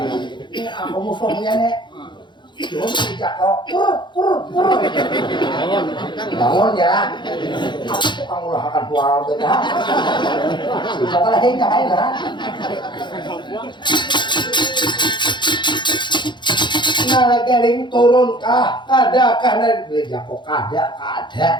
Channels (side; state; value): right; late; 0.22 ms